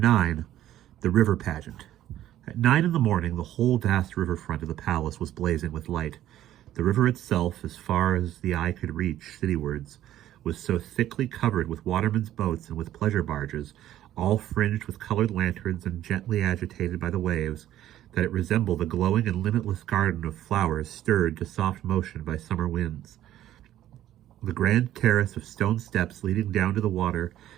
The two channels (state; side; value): quieter; left; 12.8 dB